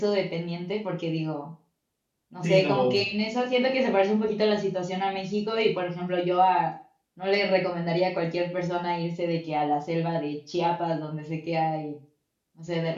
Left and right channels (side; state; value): both; identical; correlation 1.00